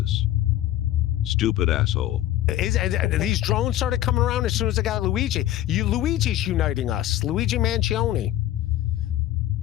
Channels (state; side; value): quieter; right; 13.4 dB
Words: Stupid asshole. These drones started coming around as soon as I got Luigi. Luigi's uniting us. Luigi Mangione.